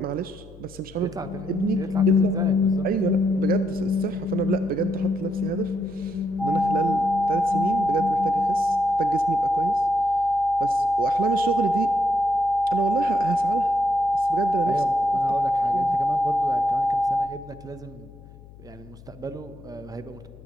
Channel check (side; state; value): left; noise; hum, 21 dB below the sound